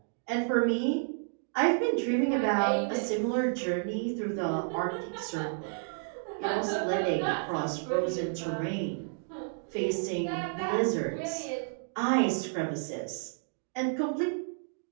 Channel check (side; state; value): left; silent; digital silence